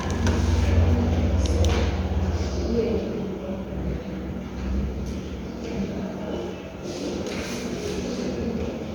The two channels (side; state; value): both; identical; correlation 1.00